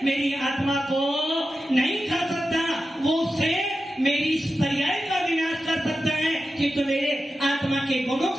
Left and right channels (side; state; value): both; normal; correlation 0.91